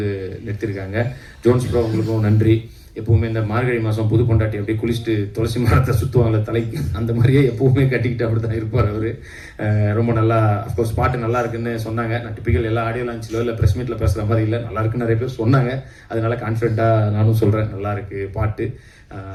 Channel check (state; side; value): identical; both; correlation 1.00